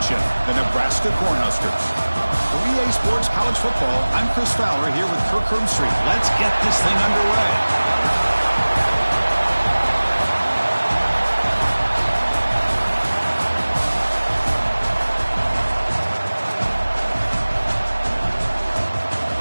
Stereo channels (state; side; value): inverted; both; correlation -1.00